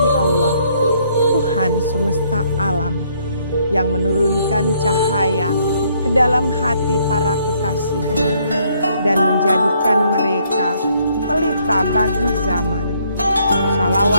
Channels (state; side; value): inverted; both; correlation -0.68